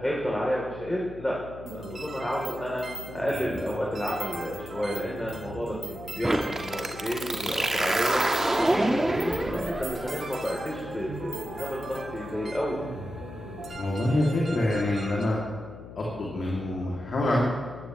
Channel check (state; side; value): noise; left; hum, 14 dB below the sound